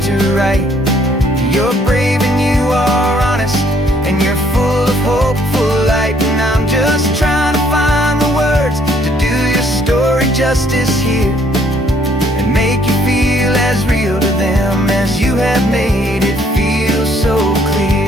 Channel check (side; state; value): both; normal; correlation 0.65